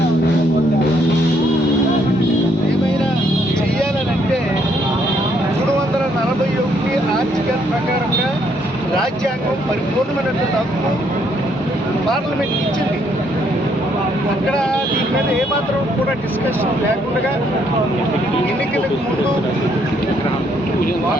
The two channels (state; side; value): normal; both; correlation 0.70